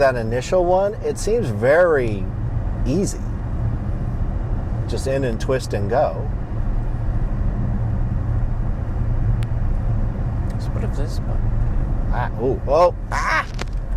initial one, it seems very easy. Just in and twist and go. So what if this button?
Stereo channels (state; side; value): identical; both; correlation 1.00